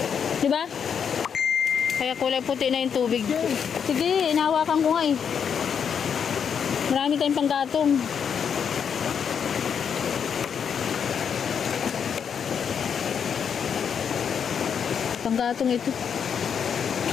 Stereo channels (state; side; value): quieter; right; 7.3 dB